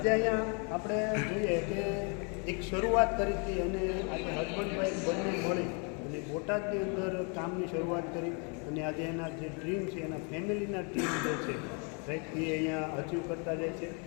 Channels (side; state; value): right; quieter; 36.4 dB